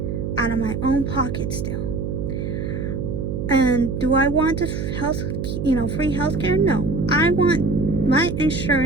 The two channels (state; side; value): noise; right; hum, 3 dB below the sound